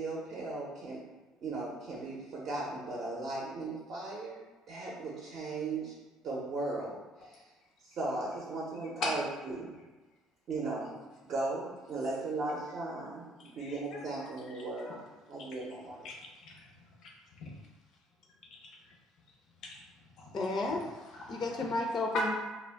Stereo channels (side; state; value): both; normal; correlation 0.64